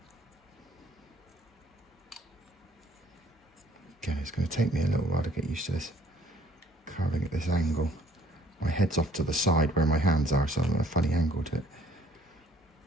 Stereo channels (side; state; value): both; normal; correlation 0.60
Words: Again, it's going to take me a little while to get used to this carving at this angle. My head's off to the side where my hands are, so I'm at a funny angle to it.